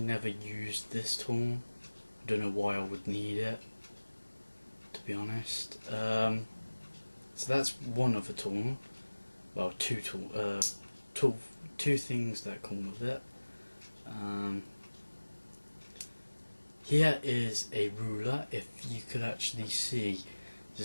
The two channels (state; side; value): inverted; both; correlation -1.00